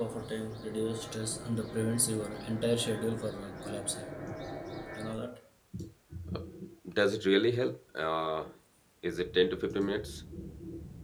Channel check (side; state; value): both; identical; correlation 1.00